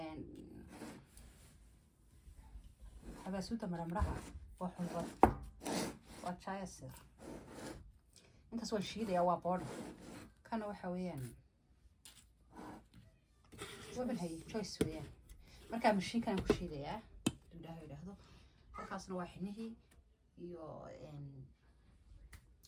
حبسوته مرمرها وحنظر وشاي السر انت سوى الشيء ده يا بورد كانوا حويان ومن هي شوي سويان مركب مشي كان كل شيء ده ده هذا خاصنا واحد iyo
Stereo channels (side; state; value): both; identical; correlation 1.00